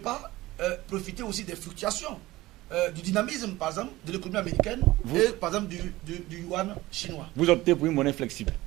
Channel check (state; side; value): quieter; left; 18.2 dB